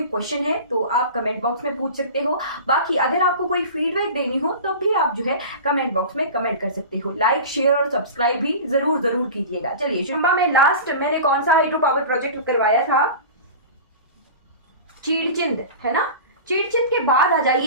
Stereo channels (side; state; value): both; inverted; correlation -0.34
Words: क्वेश्चन है तो आप कमेंट बॉक्स में पूछ सकते हो। बाकी अगर आपको कोई फीडबैक देनी हो तो भी आप जो है कमेंट बॉक्स में कमेंट कर सकते हो। लाइक शेयर और सब्सक्राइब भी जरूर जरूर कीजिएगा। चलिए, चंबा में लास्ट मैंने कौन सा हाइड्रो पावर प्रोजेक्ट करवाया था? चीड़चिंद, है ना। चीड़चिंद के बाद आ